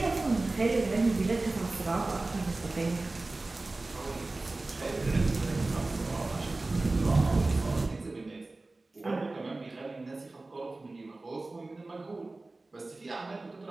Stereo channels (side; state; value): left; quieter; 3.1 dB